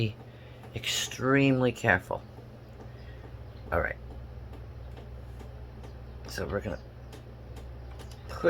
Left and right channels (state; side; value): identical; both; correlation 1.00